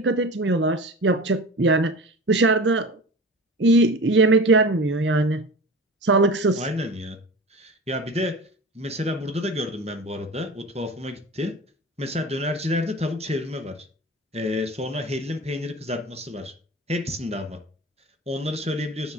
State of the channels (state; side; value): normal; both; correlation 0.34